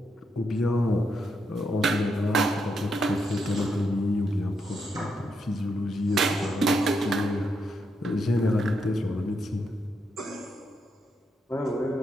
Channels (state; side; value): normal; both; correlation 0.81